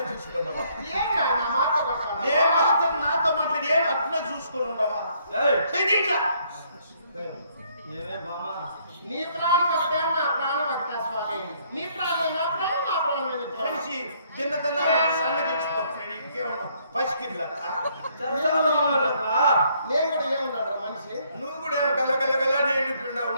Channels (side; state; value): both; inverted; correlation -0.67